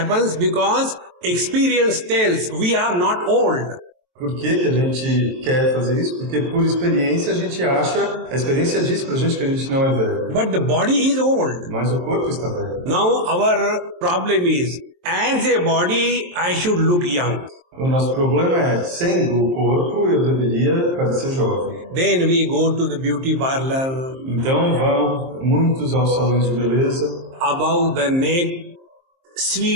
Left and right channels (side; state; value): left; late; 23 ms